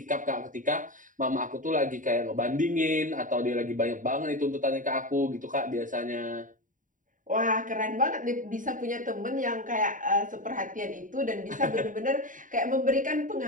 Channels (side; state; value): left; late; 0.38 ms